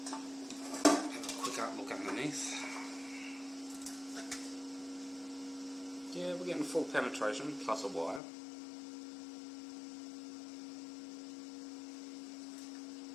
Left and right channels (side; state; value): right; drops out; at 8.2 s